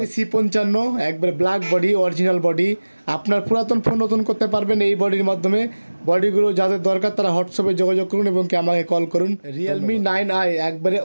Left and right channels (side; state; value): both; inverted; correlation -1.00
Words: C55 একবারে ব্ল্যাক বডি অরিজিনাল বডি, আপনার পুরাতন ফোন নতুন করতে পারবেন এই বডির মাধ্যমে। বডিগুলো যাদের দরকার তারা হোয়াটসঅ্যাপে যোগাযোগ করুন এবং কি আমাকে কল করুন। রিয়েলমি 9i একবারে